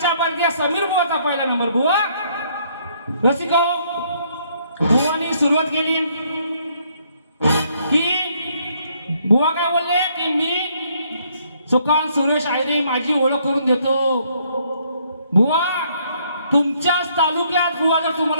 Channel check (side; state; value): both; inverted; correlation -0.68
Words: बर्दिया समीर बुवाचा पहिला नंबर। बुवा रसिक हो, बुवानी सुरुवात केली की बुवा काय बोलले की मी सुकान सुरेश आयरे माझी ओळख करून देतो। बुवा तुमच्याच तालुक्यात बुवा जर